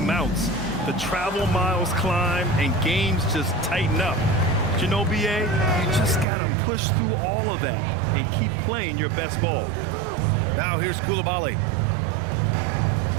The travel miles climb and games just tighten up. But you know, BA, you just got to push through all of that and keep playing your best ball. Now here's Coulibaly.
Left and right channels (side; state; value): left; drops out; at 6.2 s